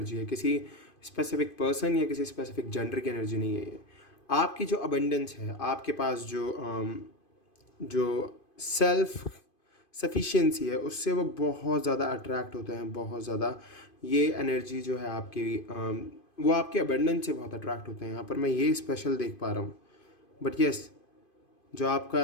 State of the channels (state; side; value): late; right; 2.5 ms